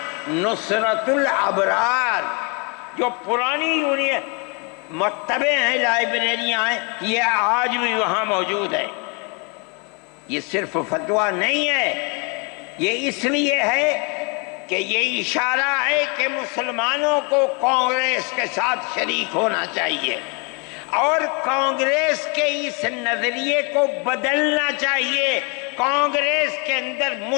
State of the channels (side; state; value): right; quieter; 33.5 dB